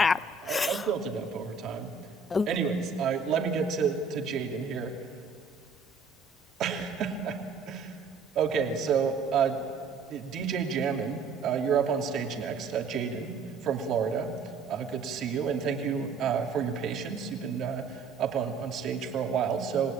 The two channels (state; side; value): quieter; left; 4.6 dB